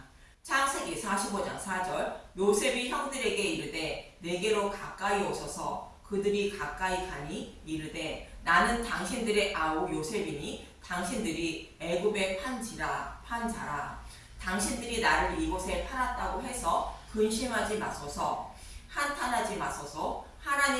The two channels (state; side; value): identical; both; correlation 1.00